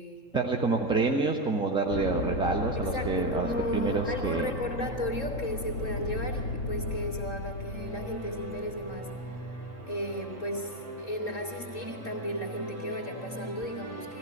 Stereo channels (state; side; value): late; right; 3.7 ms